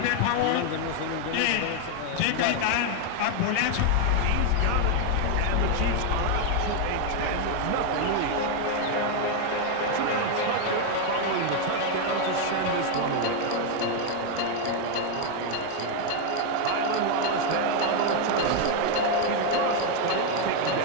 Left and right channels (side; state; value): both; different; correlation 0.01